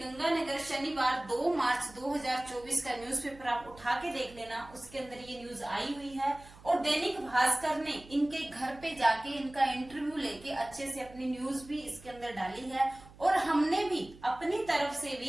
शनिवार 2 मार्च 2024 का न्यूज़पेपर आप उठा के देख लेना, उसके अंदर ये न्यूज आई हुई है। और दैनिक भास्कर ने इनके घर पे जाके इनका इंटरव्यू लेके अच्छे से अपनी न्यूज भी इसके अंदर डाली है और हमने भी अपनी तरफ से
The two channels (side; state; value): right; noise; hum, 21 dB below the sound